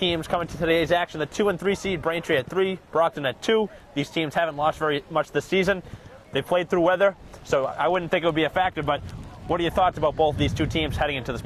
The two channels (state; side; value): identical; both; correlation 1.00